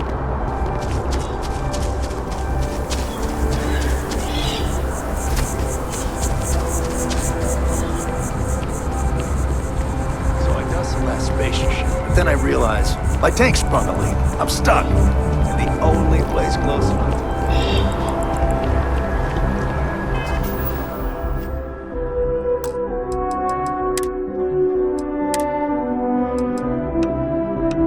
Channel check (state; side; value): identical; both; correlation 1.00